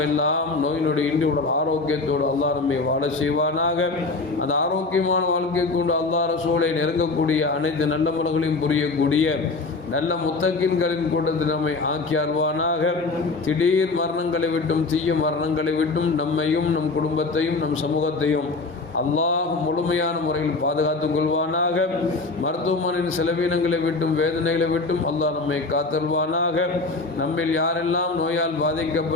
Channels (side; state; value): right; quieter; 3.7 dB